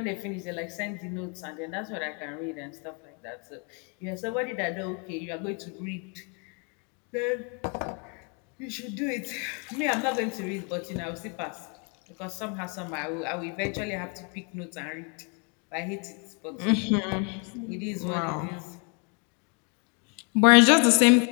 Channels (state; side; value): quieter; right; 36.2 dB